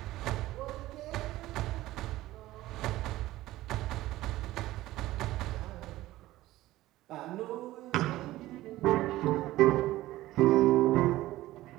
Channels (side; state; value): left; quieter; 16.4 dB